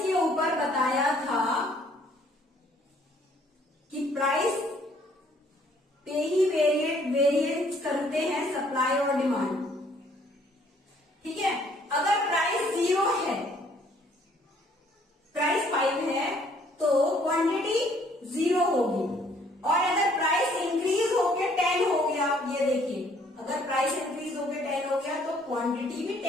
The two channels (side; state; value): both; normal; correlation 0.62